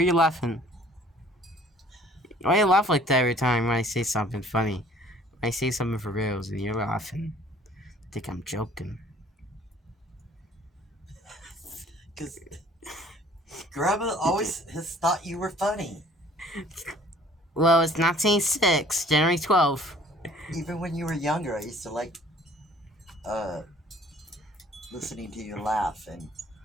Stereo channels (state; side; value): normal; both; correlation 0.54